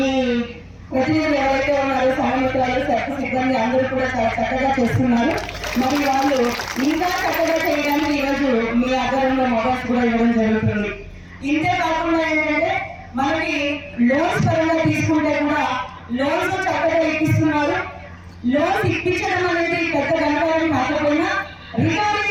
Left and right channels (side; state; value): both; identical; correlation 1.00